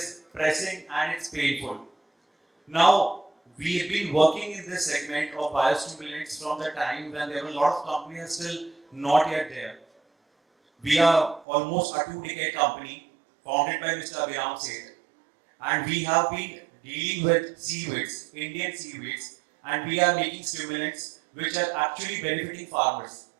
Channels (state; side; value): drops out; left; at 11.5 s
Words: pressing and it's painful. Now, we have been working in this segment of biostimulants from the time when there were a lot of companies still not yet there. We are almost a 2-decade company founded by Mr. Abhiram Seth, and we have been dealing with seaweeds, Indian seaweeds, and we are making stimulants which are actually benefiting farmers.